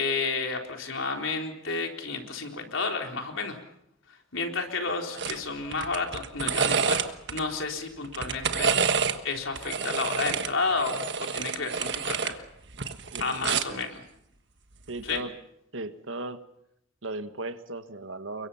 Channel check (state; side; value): normal; both; correlation -0.19